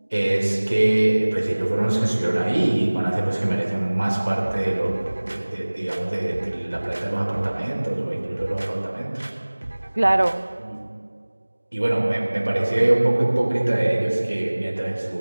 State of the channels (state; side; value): inverted; both; correlation -1.00